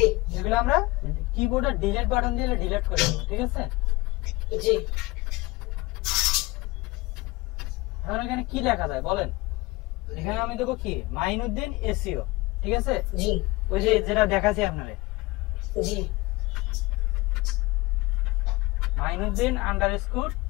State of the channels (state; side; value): quieter; right; 22.1 dB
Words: এগুলো আমরা কিবোর্ডে ডিলিট বাটন দিয়ে ডিলিট করে দেব, ঠিক আছে? জি। এখন এখানে কি লেখা যায় বলেন? এখানে আমি দেবো কি, মাইনুদ্দিন এসইও, ঠিক আছে? জি। ওই যে যেটা দেখাচ্ছি আপনারে, জি। মাইনুদ্দিন আন্ডারস্কোর